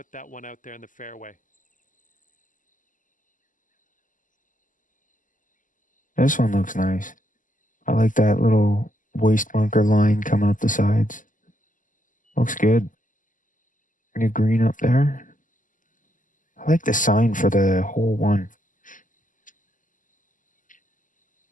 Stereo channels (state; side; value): late; right; 0.38 ms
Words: that one out there in the fairway. This one looks nice. I like that little waist bunker line coming up the sides. Looks good. New green up there. I like the sign for the hole one.